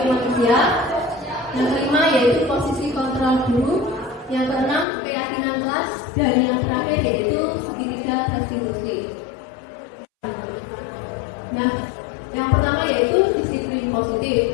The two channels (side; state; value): right; drops out; at 4.9 s